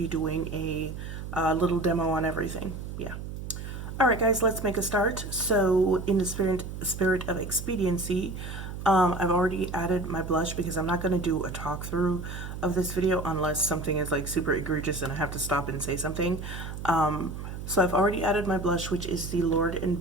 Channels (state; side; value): noise; right; hum, 8 dB below the sound